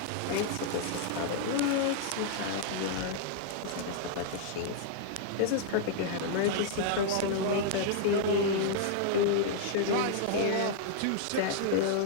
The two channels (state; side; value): different; both; correlation -0.01